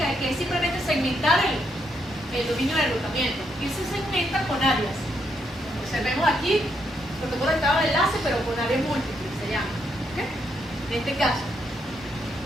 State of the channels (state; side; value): normal; both; correlation 0.77